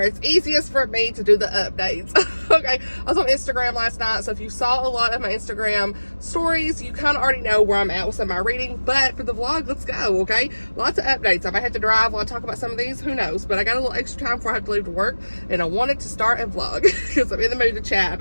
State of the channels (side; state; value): both; inverted; correlation -1.00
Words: it's easiest for me to do the updates, okay? I was on Instagram last night, so if you saw a lot of my Instagram stories, you kind of already know where I'm at with some of my reading, but for the vlog, let's go, okay? Lots of updates. I might have to drive while I talk about some of these, who knows? But I got a little extra time before I have to leave to work, and I wanted to start a vlog because I'm in the mood to chat